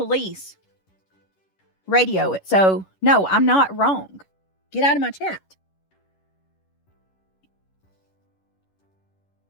radio it. So, no, I'm not wrong. Get out of my chat.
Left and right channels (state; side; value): late; right; 11 ms